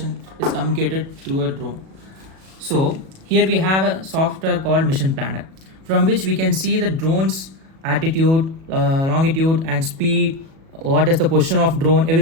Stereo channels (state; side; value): late; left; 37 ms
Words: is communicated through a drone. So here we have a software called Mission Planner, from which we can see the drone's altitude, longitude and speed, what is the position of drone,